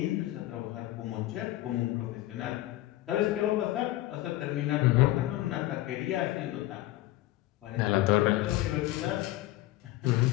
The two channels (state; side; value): quieter; right; 16.4 dB